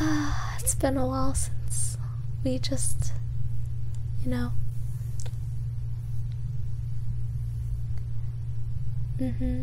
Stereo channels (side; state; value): both; identical; correlation 1.00